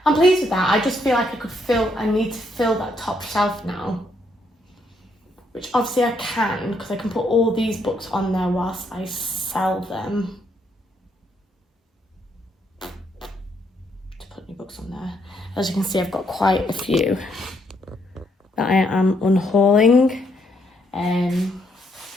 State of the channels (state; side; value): normal; both; correlation 0.74